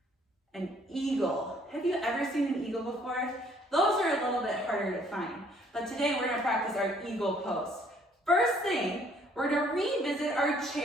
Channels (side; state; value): both; normal; correlation 0.62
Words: an eagle? Have you ever seen an eagle before? Those are a little bit harder to find, but today we're gonna practice our eagle pose. First thing, we're gonna revisit our